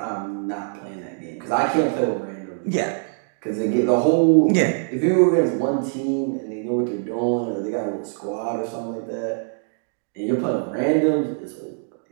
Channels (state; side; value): silent; left; digital silence